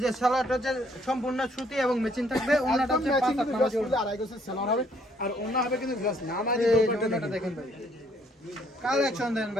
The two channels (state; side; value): normal; both; correlation 0.65